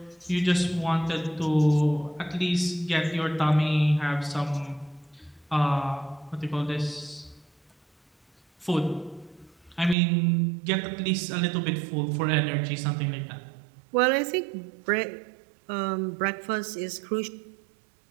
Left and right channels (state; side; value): drops out; left; at 10.0 s